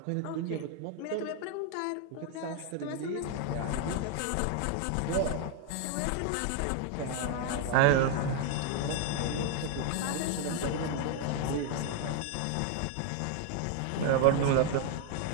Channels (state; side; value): different; both; correlation 0.00